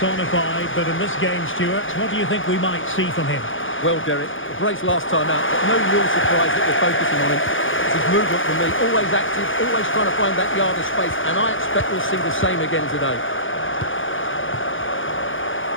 but in this game, Stuart, what do you think we might see from him? Well, Derek, the brace last time out, but no real surprise that they're focusing on him. It's his movement for me, always active, always trying to find that yard of space, and I expect we'll see the same again today.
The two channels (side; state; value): right; late; 0.57 ms